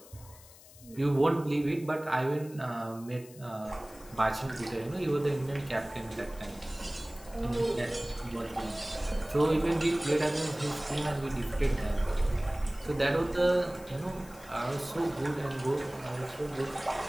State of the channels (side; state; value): left; noise; hiss, 21 dB below the sound